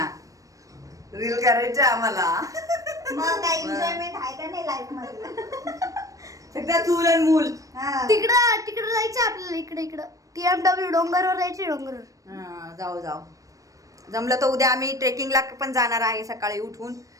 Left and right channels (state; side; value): late; left; 0.16 ms